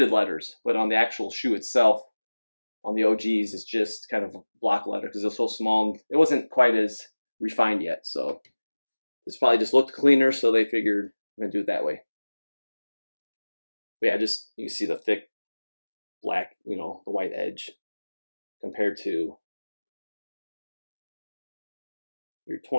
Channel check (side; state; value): both; inverted; correlation -1.00